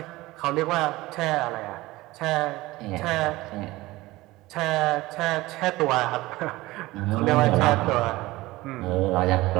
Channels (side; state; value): left; quieter; 19.2 dB